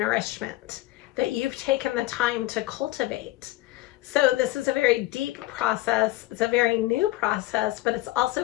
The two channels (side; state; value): right; quieter; 17.4 dB